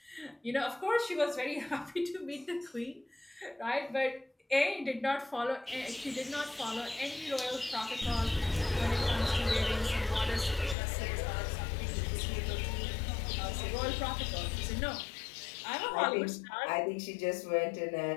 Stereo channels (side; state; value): right; drops out; at 10.8 s